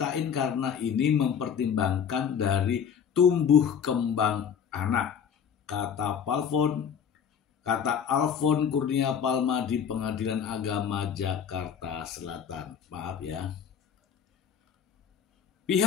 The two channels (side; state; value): right; quieter; 7.7 dB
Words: karena ini mempertimbangkan dari tumbuh kembang anak. Kata Alfon Kurnia Palma di Pengadilan Agama Jakarta Selatan. Maaf ya.